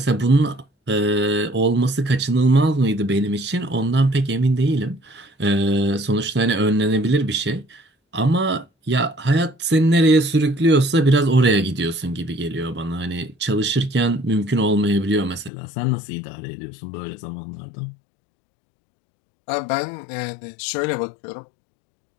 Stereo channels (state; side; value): drops out; right; at 15.5 s